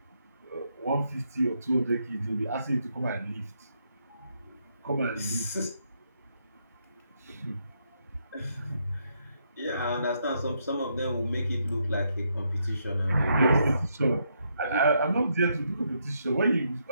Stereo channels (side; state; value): both; inverted; correlation -0.77